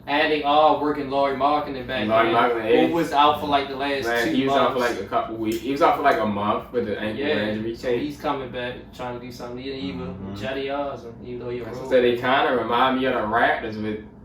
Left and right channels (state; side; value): identical; both; correlation 1.00